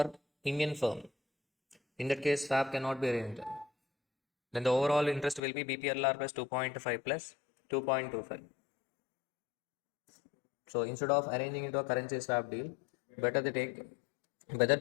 Indian firm. In that case, swap cannot be arranged. Then the overall interest will be BPLR plus 2.5 plus 2.25. So instead of arranging into a currency swap deal, better they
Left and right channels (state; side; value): drops out; right; at 5.4 s